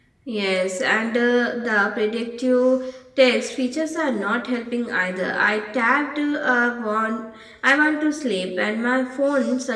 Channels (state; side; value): identical; both; correlation 1.00